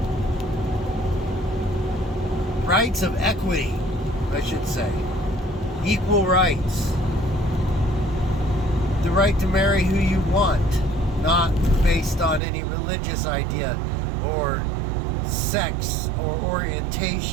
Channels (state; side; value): drops out; left; at 12.4 s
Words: rights of equity, I should say, equal rights, the right to marry who you want, not based on any religious idea or sex or